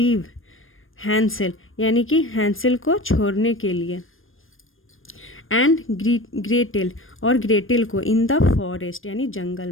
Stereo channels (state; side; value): late; right; 0.59 ms